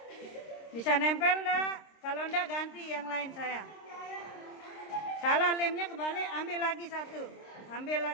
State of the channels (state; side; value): late; right; 26 ms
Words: Bisa nempel enggak? Kalau enggak ganti yang lain sayang. Salah lemnya kebalik, ambil lagi